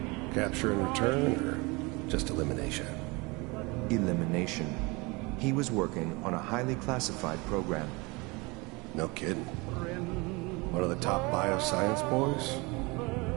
Capture and return, or just elimination? Elimination. He was working on a highly classified program. No kidding. One of the top bioscience boys?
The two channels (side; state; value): left; quieter; 26.1 dB